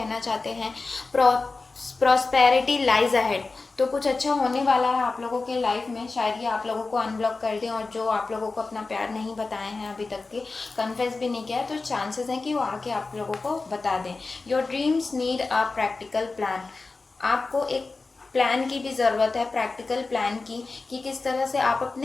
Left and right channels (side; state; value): right; quieter; 3.8 dB